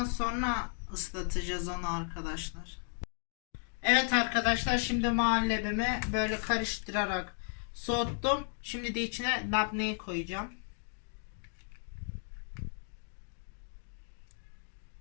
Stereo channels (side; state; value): right; silent; 55 dB below the other